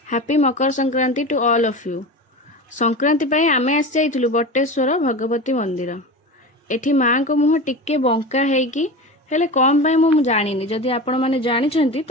happy Makar Sankranti to all of you. Sankranti पाई आमे आसी जाइथिलु बटेश्वर भगवती मंदिर। एठी माँ को मुह टिके बंका हेकी हेले कम पाई मु जानिनी। जदि आपण माने जानिछंती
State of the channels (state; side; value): normal; both; correlation 0.29